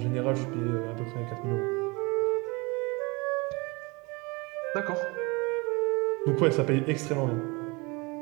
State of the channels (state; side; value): quieter; left; 26.7 dB